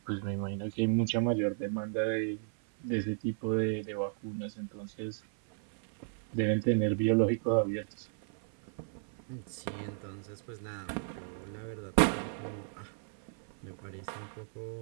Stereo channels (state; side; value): silent; left; 55 dB below the other